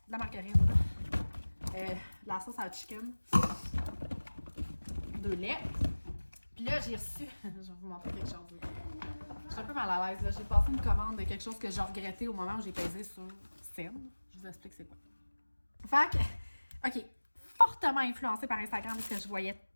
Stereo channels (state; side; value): inverted; both; correlation -1.00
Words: la margarine. La sauce à chicken. 2 laits. Puis là, j'ai reçu... je vais vous montrer quelque chose. Je suis un peu mal à l'aise. J'ai passé une commande de quelque chose que j'ai regretté au moment où j'ai pesé sur Send. Je vous explique c'est quoi. Fait que, OK. Fortement influencée par Instagram parce que je voyais